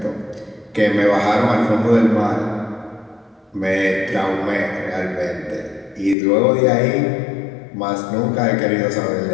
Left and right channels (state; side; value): drops out; right; at 6.2 s